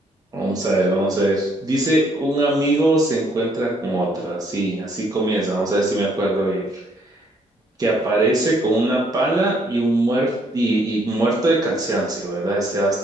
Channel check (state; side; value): normal; both; correlation 0.67